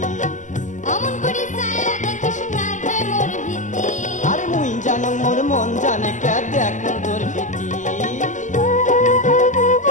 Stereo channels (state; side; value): late; right; 0.36 ms